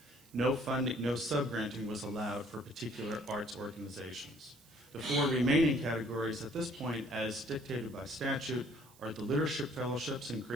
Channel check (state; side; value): noise; right; hiss, 26 dB below the sound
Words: No funding, no sub-granting was allowed for particular arts organizations. The 4 remaining categories at this point, as dictated by statute, are the Leadership Fellowships in